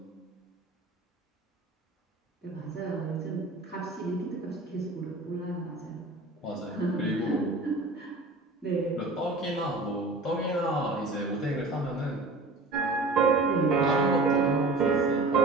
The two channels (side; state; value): left; quieter; 3.1 dB